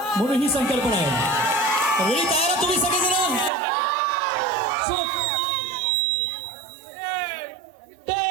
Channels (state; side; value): drops out; left; at 3.5 s